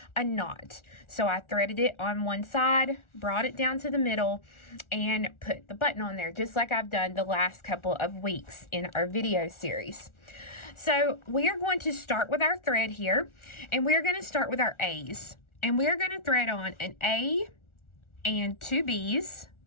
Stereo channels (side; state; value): right; late; 1.4 ms